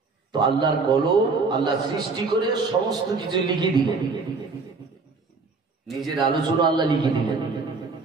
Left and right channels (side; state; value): left; quieter; 4.3 dB